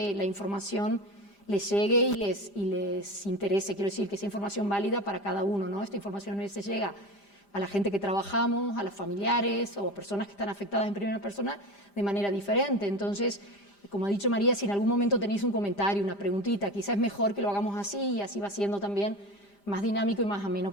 la información les llegue y les interese. Quiero decir, que sea información válida para cada uno, ¿no? Esta información les llega a la gente que trabajamos, a los familiares o a personas que están afectadas en primera persona de manera diferente. Entonces, como ha dicho María, si en algún momento tenéis un comentario, una preguntita, quizás es mejor que lo hagamos así y así va siendo también más dinámico y más ameno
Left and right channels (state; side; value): late; right; 5.0 ms